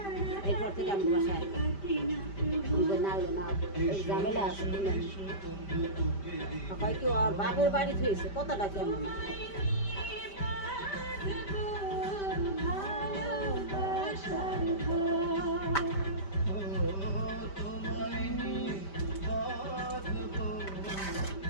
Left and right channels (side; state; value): right; late; 5.1 ms